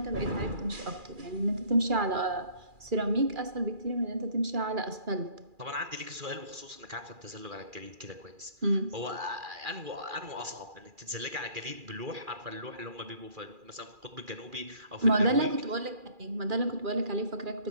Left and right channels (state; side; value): late; left; 2.4 ms